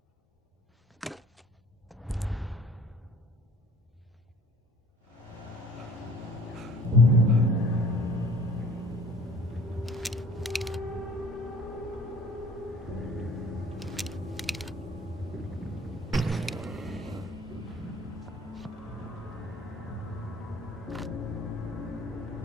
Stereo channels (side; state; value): both; normal; correlation 0.51